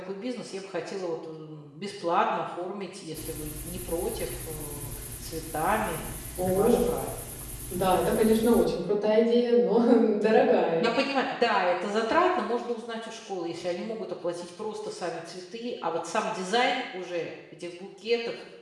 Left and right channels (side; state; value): both; identical; correlation 1.00